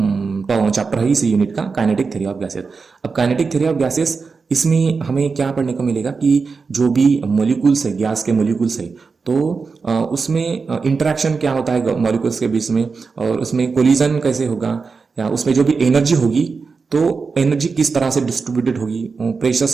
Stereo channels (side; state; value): left; quieter; 4.8 dB